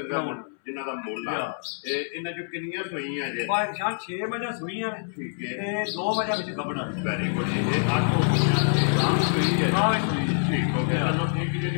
जिन्हां दा मुੱਲ आ ते इन्हां चों कितनियां सूईयां जे? भाई जान 6 मज्जां सूईयां ने। ठीक है ते 2 मज्जां विच गबना। वेरी गुड जी। ये 8 गां सूई है। हां सूई ठीक हो गया। चलो एक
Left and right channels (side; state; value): right; silent; 61 dB below the other